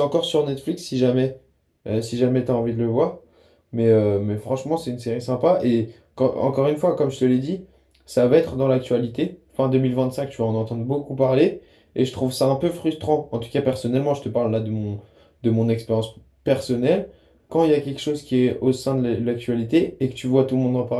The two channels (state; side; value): identical; both; correlation 1.00